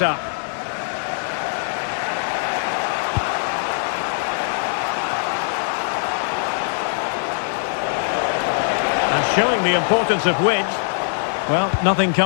up. And showing the importance of width. Well, nothing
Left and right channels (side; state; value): right; silent; digital silence